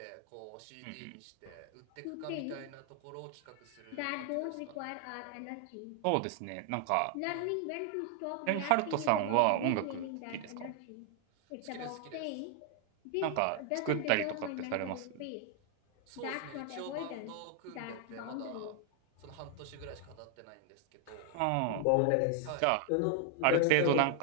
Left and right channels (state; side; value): different; both; correlation 0.00